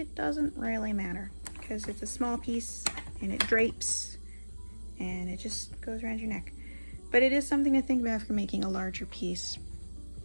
doesn't really matter because it's a small piece and it drapes and it just goes around your neck. But it is something to think about for making a larger piece.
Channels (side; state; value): both; inverted; correlation -1.00